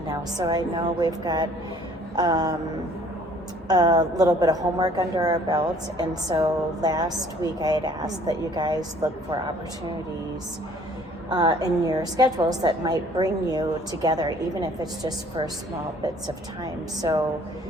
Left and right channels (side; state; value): both; normal; correlation 0.56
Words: now, so I know we've got a little bit of homework under our belts. And so last week I had asked that you guys look for opportunities in your schedules that might bring you together, even if it's just for small bits of time. So